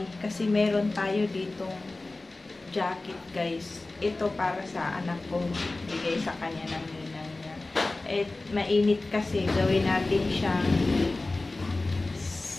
kasi meron tayo ditong jacket guys. Ito para sa anak ko, bigay sa kanya ng ninang niya. At mainit kasi, gawin natin siyang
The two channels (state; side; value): quieter; right; 3.1 dB